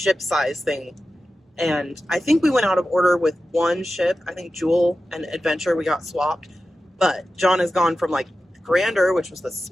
size thing. And I think we went out of order with one ship. I think Jewel and Adventure, we got swapped. But John has gone from like Grander, which was the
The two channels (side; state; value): both; normal; correlation 0.93